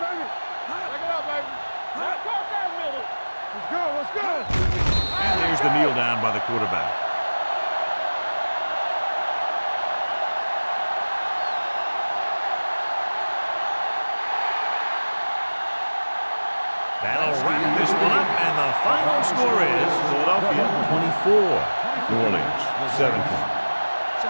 Take it up, baby. Cross that middle. Let's go. And there's the kneel down by the quarterback. That'll wrap this one up, and the final score is Philadelphia 24, New Orleans 17.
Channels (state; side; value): inverted; both; correlation -1.00